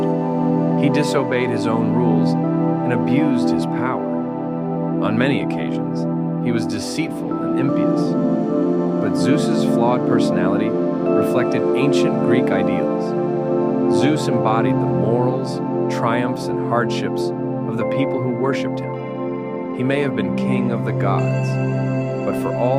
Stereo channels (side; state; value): both; identical; correlation 1.00